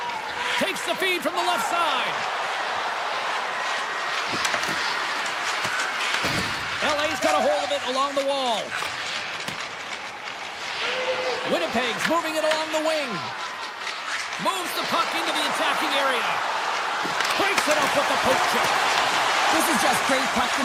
Takes the feed from the left side. LA's got a hold of it along the wall. Winnipeg's moving it along the wing. Moves the puck into the attacking area. Breaks it up with the poke check. This is just great puck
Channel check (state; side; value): identical; both; correlation 1.00